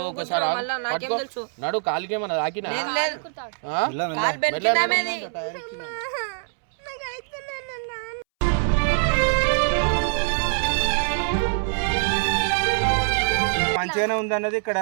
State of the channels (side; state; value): left; silent; 63 dB below the other